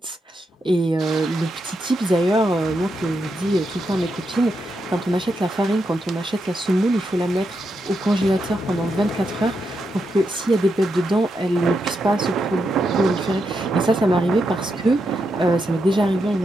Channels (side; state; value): both; normal; correlation 0.83